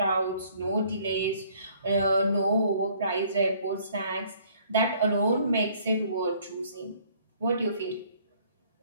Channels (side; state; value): both; inverted; correlation -0.59